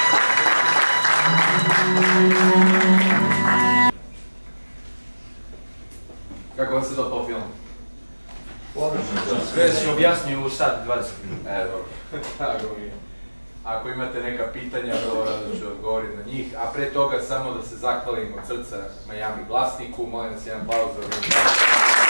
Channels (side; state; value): both; inverted; correlation -1.00